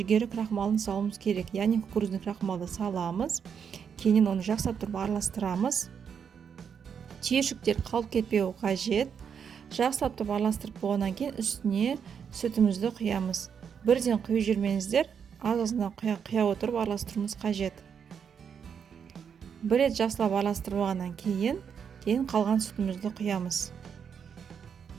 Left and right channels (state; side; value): quieter; left; 7.2 dB